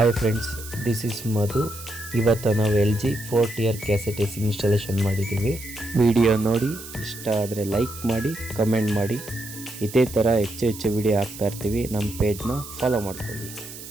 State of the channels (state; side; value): noise; right; hiss, 13 dB below the sound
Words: friends, this is ಮಧು. ಇವತ್ತು ನಾವು LG 4 cassette S installation ಮಾಡಿದ್ದೀವಿ. ವಿಡಿಯೋ ನೋಡಿ ಇಷ್ಟ ಆದರೆ ಲೈಕ್ ಮಾಡಿ, ಕಮೆಂಟ್ ಮಾಡಿ. ಇದೇ ಥರ ಹೆಚ್ಚು ವಿಡಿಯೋ ಹಾಕ್ತಾ ಇರ್ತೀವಿ. ನಮ್ಮ ಪೇಜ್ನ ಫಾಲೋ ಮಾಡ್ಕೊಳ್ಳಿ.